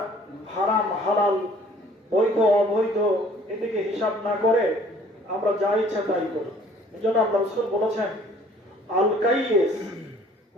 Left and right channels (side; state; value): both; normal; correlation 0.55